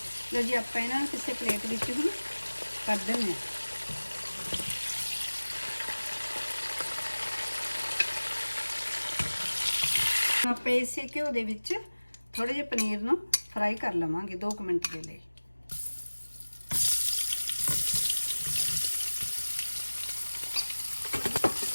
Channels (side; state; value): both; inverted; correlation -1.00